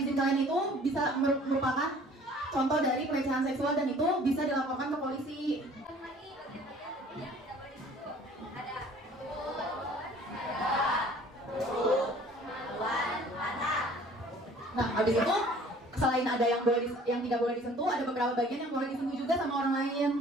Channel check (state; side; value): normal; both; correlation 0.52